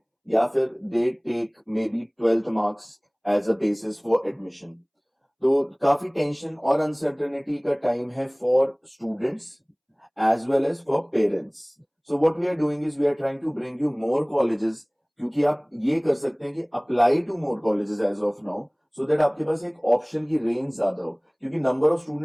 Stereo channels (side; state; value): both; identical; correlation 1.00